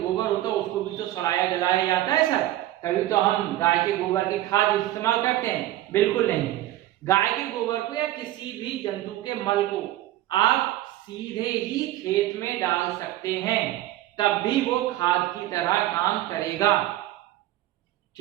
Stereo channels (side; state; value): left; quieter; 14.7 dB